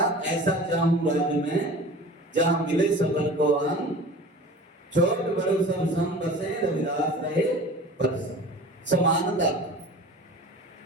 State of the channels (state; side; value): normal; both; correlation 0.39